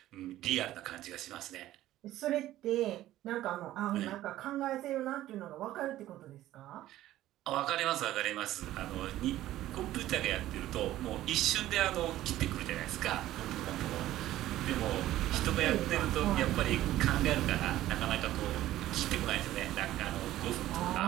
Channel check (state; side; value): quieter; left; 14.4 dB